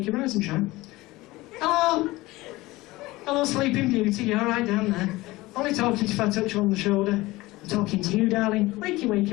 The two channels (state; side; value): quieter; right; 19.7 dB